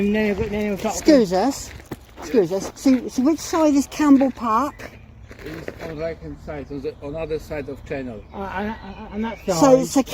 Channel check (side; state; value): both; identical; correlation 1.00